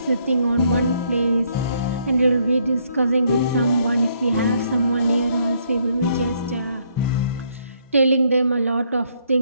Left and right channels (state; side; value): inverted; both; correlation -0.70